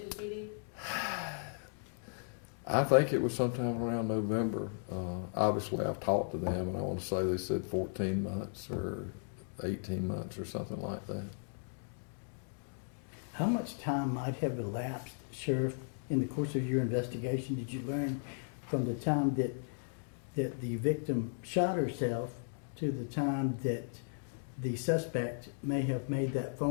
PD? I think it was sometime around November. Obviously, I've talked to them, and I want to say they said 14 months or 18 months or something like that. How much time might have elapsed, Sheriff, in the course of your investigation? Did you learn from the time that the victim shot herself to the time that the suspect may have made that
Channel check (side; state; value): right; silent; digital silence